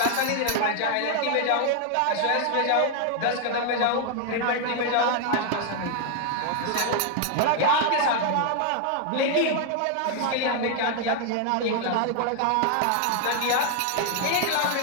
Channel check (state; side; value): different; both; correlation 0.00